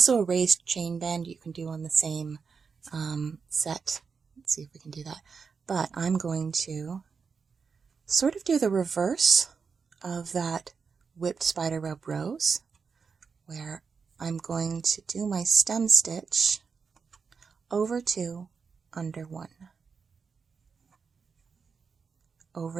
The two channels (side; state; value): left; quieter; 5.5 dB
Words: a raised chain bend you can do on the same set. Let's see if we can do that. But I'm going to sort of do the reverse of that whipped Spiderweb Rose, where I'm going to do my stem stitch over 2, under 1,